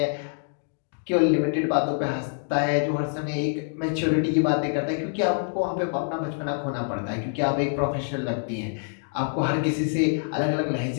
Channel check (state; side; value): silent; right; digital silence